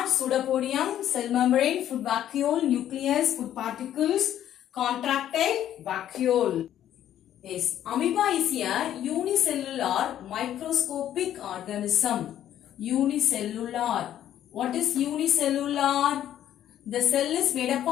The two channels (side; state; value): right; quieter; 11.3 dB